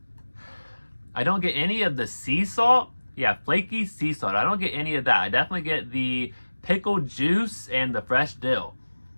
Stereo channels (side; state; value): both; inverted; correlation -1.00